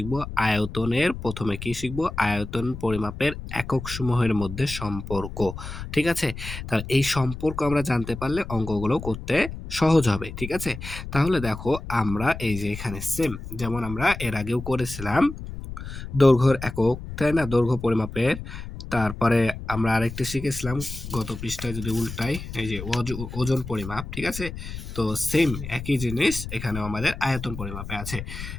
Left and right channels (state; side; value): noise; left; rumble, 9 dB below the sound